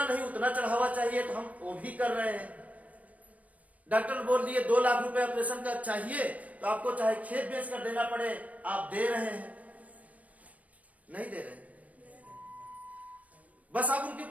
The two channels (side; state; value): left; late; 0.069 ms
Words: नहीं उतना चढ़ावा चाहिए तो हम वो भी कर रहे हैं। डॉक्टर बोल दिए 2 लाख रुपए ऑपरेशन का चाहिए तो आपको चाहे खेत बेच कर देना पड़े, आप दे रहे हैं? नहीं दे रहे, बस आप उनके